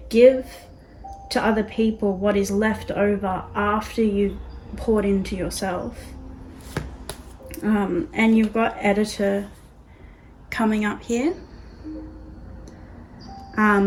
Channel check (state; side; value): identical; both; correlation 1.00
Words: give to other people what is left over after you've poured into yourself. And you've got editor coming up here.